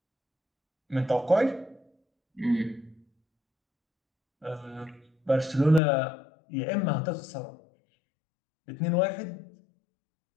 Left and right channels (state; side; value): drops out; right; at 5.8 s